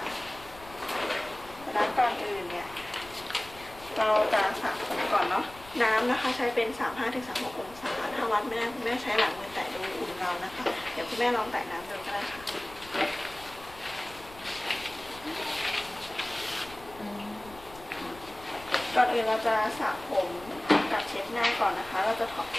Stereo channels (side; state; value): left; noise; rumble, 20 dB below the sound